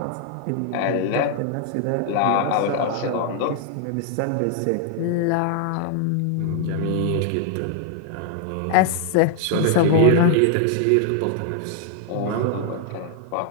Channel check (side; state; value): both; different; correlation 0.00